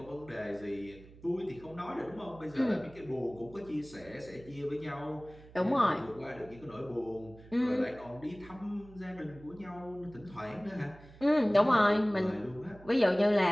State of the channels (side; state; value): right; noise; hum, 21 dB below the sound